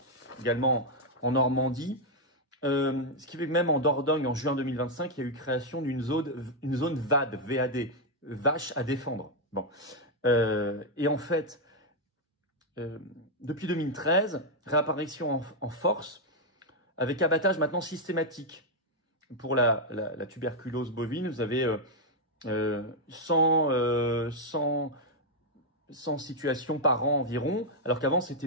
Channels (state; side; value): normal; both; correlation -0.02